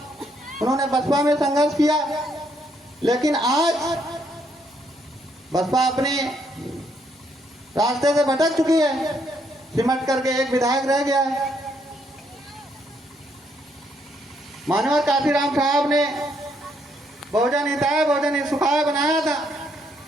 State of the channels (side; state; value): both; normal; correlation 0.73